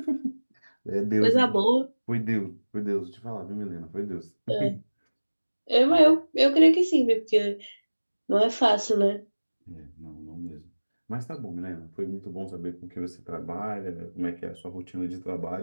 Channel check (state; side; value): inverted; both; correlation -1.00